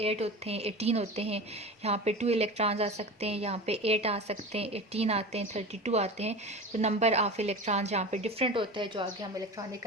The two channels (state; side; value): normal; both; correlation 0.31